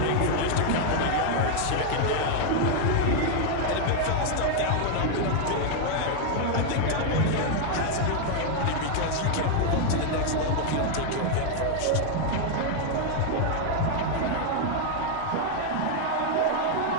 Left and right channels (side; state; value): both; different; correlation 0.00